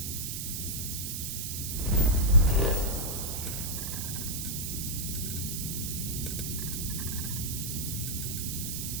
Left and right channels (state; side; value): noise; right; hiss, 3 dB below the sound